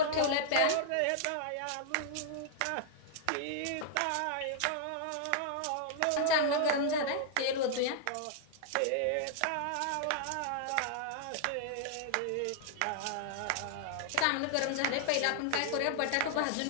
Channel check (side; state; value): both; different; correlation -0.01